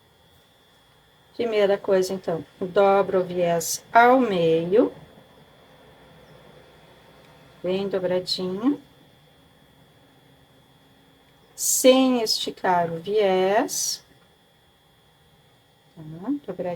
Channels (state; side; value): identical; both; correlation 1.00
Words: Primeira coisa, então, dobro o viés ao meio. Bem dobradinho. Sem esticar o viés. Tá?